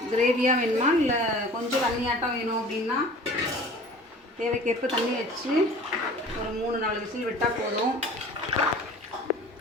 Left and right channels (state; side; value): normal; both; correlation 0.44